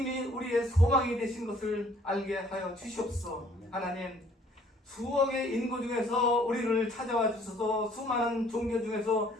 우리의 소망이 되신 것을 알게 하여 주시옵소서. 하나님, 수억의 인구 중에서 우리를 찾아와 주셔서 수많은 종교 중에서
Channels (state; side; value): normal; both; correlation 0.59